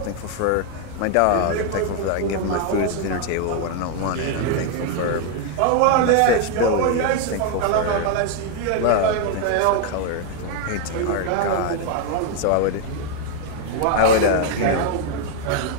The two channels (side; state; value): both; different; correlation 0.00